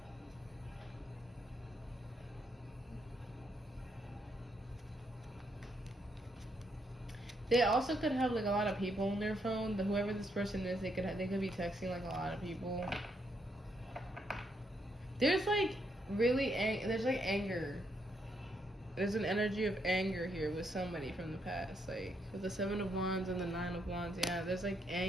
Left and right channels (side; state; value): both; normal; correlation 0.76